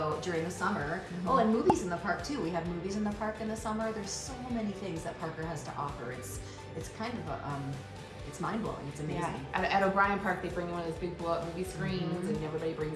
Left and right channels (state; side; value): identical; both; correlation 1.00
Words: during the summer, and movies in the park too. We have movies in the park in the summer. There's so many things that Parker has to offer. It's kind of it's mind-blowing. It's amazing. Yeah. At O'Brien Park, they bring in one of those big blow-up movie screens, and everybody